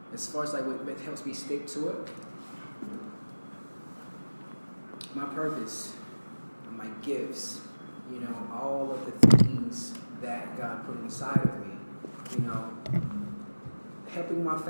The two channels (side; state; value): both; inverted; correlation -1.00